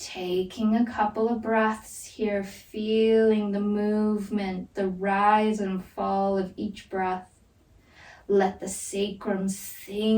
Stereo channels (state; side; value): identical; both; correlation 1.00